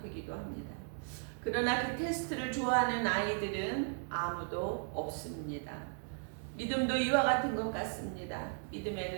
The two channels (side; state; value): left; silent; 54 dB below the other